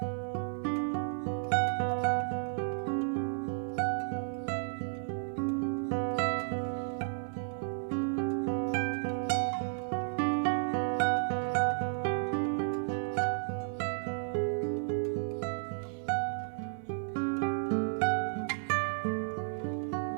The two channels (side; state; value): left; silent; 55 dB below the other